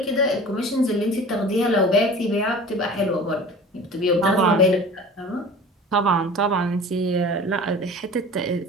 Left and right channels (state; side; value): normal; both; correlation 0.40